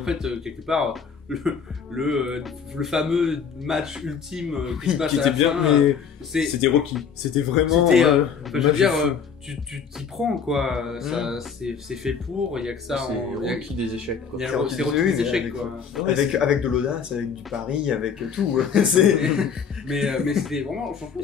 fait, quelque part, le fameux match ultime qui se passe à la bien, fin, mais c'était Rocky. C'était vraiment. Je veux dire, tu t'y prends, quoi. Ça, c'est fait pour. Il y a que ça. C'est Rocky des échecs, quoi. C'est Rocky des échecs, quoi. Avec de l'audace, avec du pari, avec tout. mais c'était vraiment. Franchement,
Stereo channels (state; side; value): quieter; right; 6.6 dB